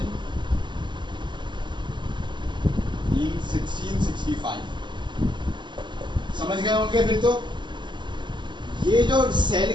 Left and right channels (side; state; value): left; late; 0.22 ms